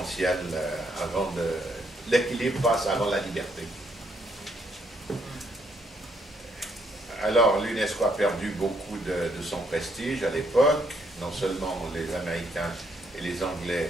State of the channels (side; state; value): both; normal; correlation 0.72